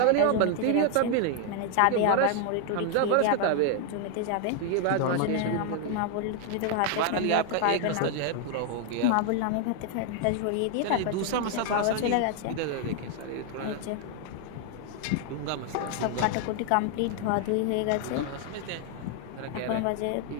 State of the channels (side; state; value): both; different; correlation 0.00